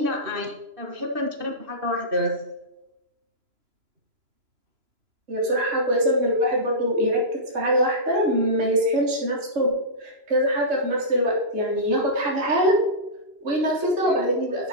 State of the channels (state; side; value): late; left; 3.0 ms